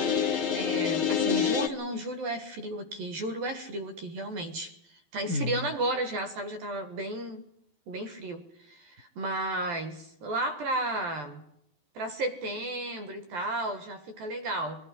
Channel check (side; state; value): left; late; 12 ms